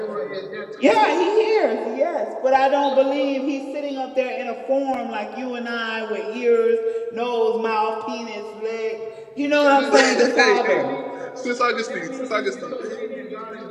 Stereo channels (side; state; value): both; identical; correlation 1.00